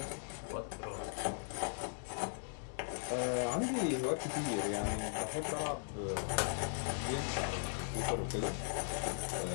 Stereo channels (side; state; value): right; silent; digital silence